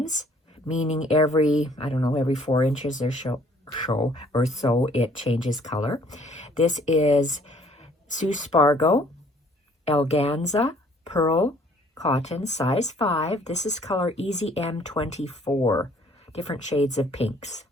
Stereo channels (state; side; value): normal; both; correlation 0.59